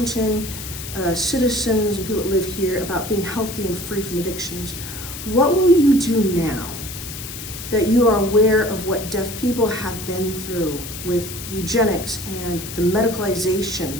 citizens and people that live here about being healthy and free from addictions, what will you do now that you are aware of what deaf people have been through with eugenics and the medicalization,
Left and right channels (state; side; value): noise; left; hiss, 10 dB below the sound